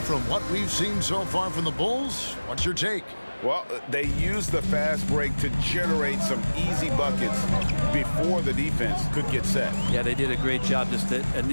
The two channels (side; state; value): both; inverted; correlation -1.00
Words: from what we've seen so far from the Bulls, what's your take? Well, they used the fast break to generate some easy buckets before the defense could get set. Yeah, they did a great job. Just the